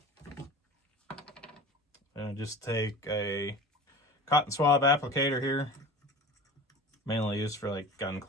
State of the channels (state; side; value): normal; both; correlation 0.36